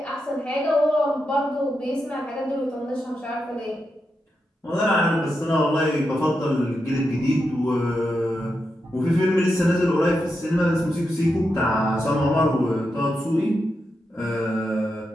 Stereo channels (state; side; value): normal; both; correlation 0.86